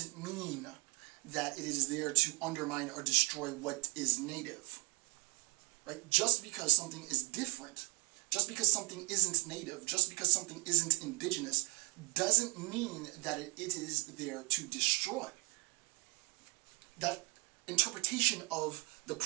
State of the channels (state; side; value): quieter; left; 29.0 dB